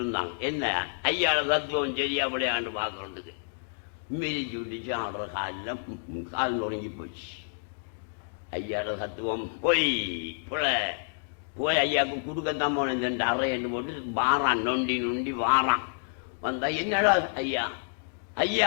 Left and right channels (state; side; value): silent; right; digital silence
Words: இருந்தான். என்ன ஐயாவோட தத்துவம் சரியா விளையாண்டு பார்க்கறதுக்கு மிதிச்சு விட்டுச்சு. ஆடுற கால் நொறுங்கி போச்சு. ஐயாவோட தத்துவம் போய் போய் ஐயாவுக்கு கொடுக்கத்தான் போனேன். 2 அறை என்று போட்டு வாரான், நொண்டி நொண்டி வாரான். வந்தா, என்னடா ஐயா,